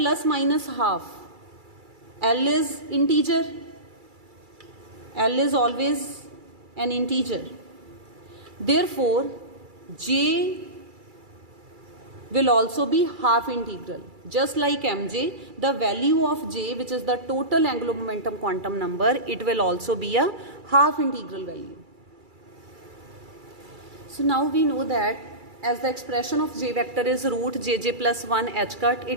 minus half. L is integer. L is always an integer. Therefore, J will also be half integral. Just like Mj, the value of J, which is the total angular momentum quantum number, it will also be a half integral value. So now we know that as the expression of J vector is root Jj plus 1 h cut,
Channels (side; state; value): left; late; 2.3 ms